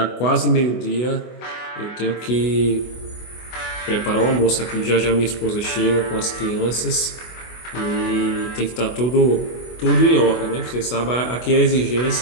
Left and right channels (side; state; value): right; late; 24 ms